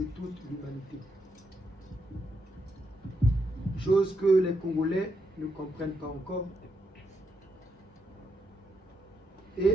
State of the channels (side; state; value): both; normal; correlation 0.80